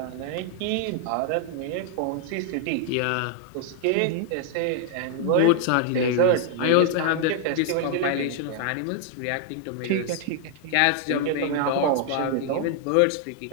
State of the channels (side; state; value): both; different; correlation 0.00